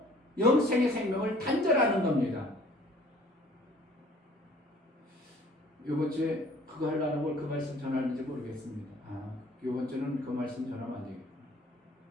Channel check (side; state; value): both; normal; correlation 0.54